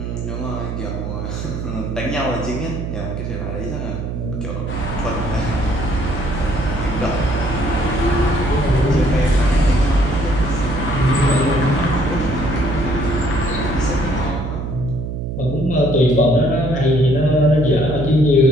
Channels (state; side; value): noise; right; hum, 5 dB below the sound